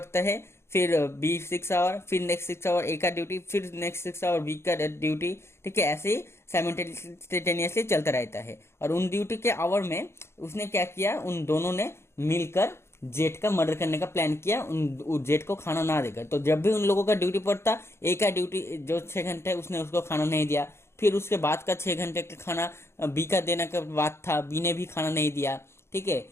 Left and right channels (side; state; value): right; late; 0.12 ms